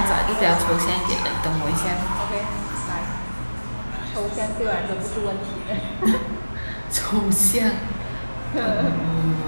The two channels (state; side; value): inverted; both; correlation -1.00